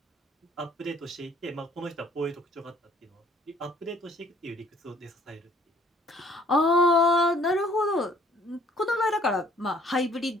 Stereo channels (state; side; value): normal; both; correlation 0.59